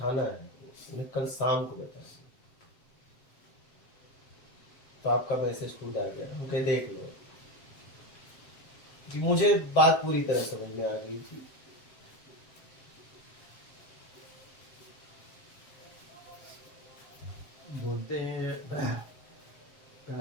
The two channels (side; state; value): right; late; 7.6 ms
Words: है, उन्हें कल शाम को बताएंगे। तो आपका मैसेज खुद आ गया, हम कहे देख लो, कि मुझे बात पूरी तरह समझ में आ गई थी। बोलते हैं